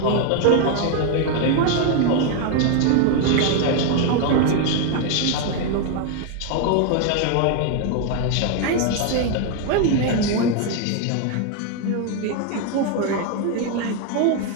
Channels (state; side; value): different; both; correlation 0.01